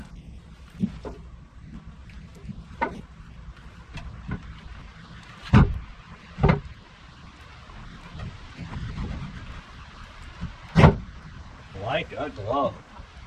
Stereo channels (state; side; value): identical; both; correlation 1.00